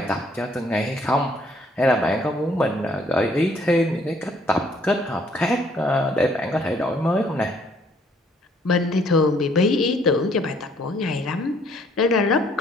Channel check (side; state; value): both; normal; correlation 0.64